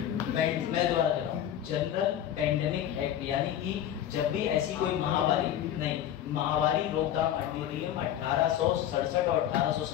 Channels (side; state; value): right; quieter; 10.9 dB